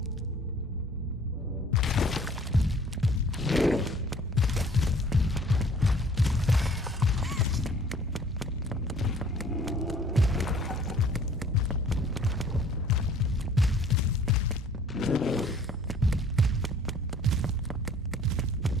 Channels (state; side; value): normal; both; correlation 0.54